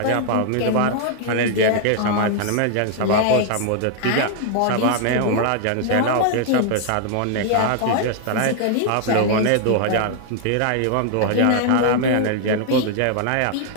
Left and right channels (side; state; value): both; different; correlation 0.00